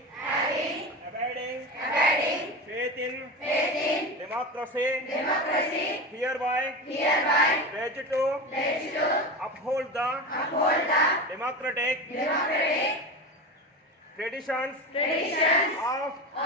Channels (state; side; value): normal; both; correlation 0.25